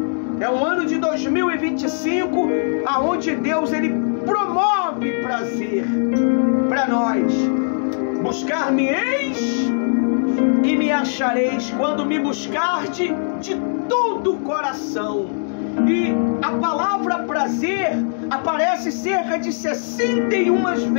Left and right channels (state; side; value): silent; right; digital silence